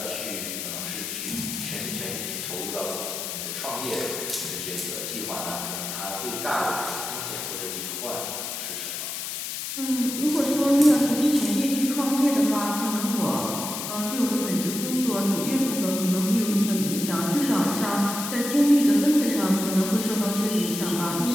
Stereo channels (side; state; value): left; noise; hiss, 5 dB below the sound